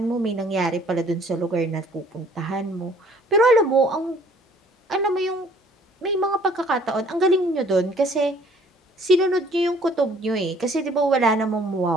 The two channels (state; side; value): normal; both; correlation 0.57